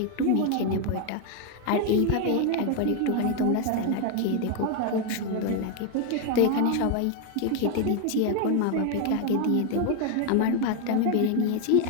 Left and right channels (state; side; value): different; both; correlation 0.01